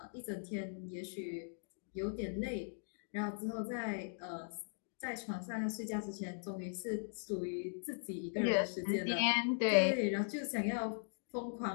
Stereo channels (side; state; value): right; silent; digital silence